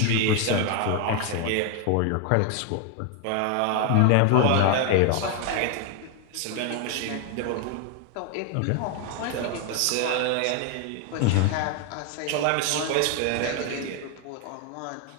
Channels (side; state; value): both; different; correlation 0.00